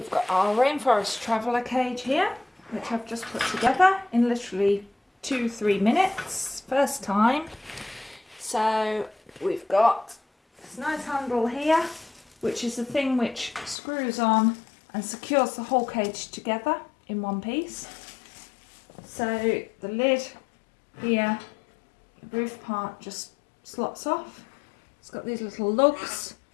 got our Rainforest traveller cage here, which I've just put together in literally 2-3 minutes, first time. So we've got this nice handle here, which is the thing which screws on and secures the whole cage together in one piece. So the lid here, the roof part just slots off. It's got these little lugs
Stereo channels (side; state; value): right; drops out; at 13.8 s